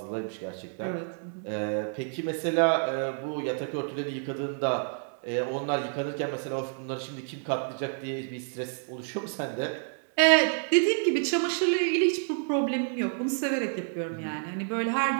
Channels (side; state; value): left; silent; 59 dB below the other